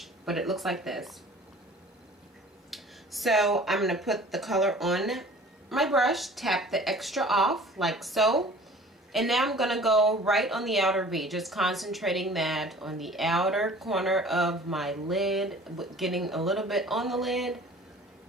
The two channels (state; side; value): normal; both; correlation 0.47